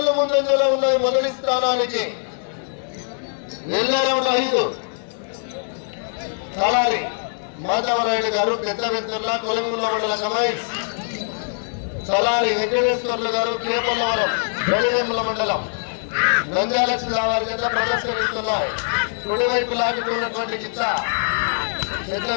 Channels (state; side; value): silent; right; digital silence